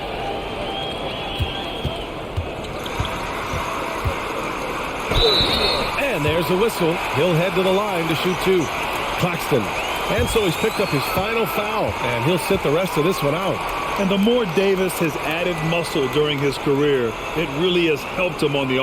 And there's a whistle. He'll head to the line to shoot 2. Claxton. And so he's picked up his final foul, and he'll sit the rest of this one out. And the more Davis has added muscle during his career, it really has helped him on the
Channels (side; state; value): both; identical; correlation 1.00